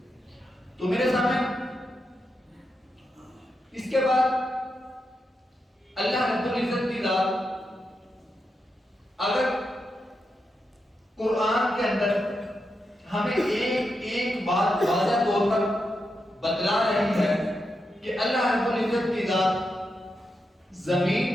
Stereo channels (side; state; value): both; normal; correlation 0.86